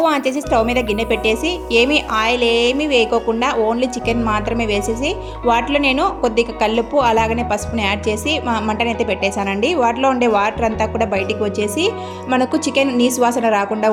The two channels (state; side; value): identical; both; correlation 1.00